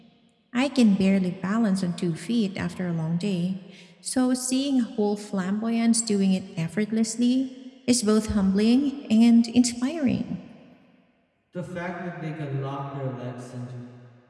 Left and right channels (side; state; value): both; identical; correlation 1.00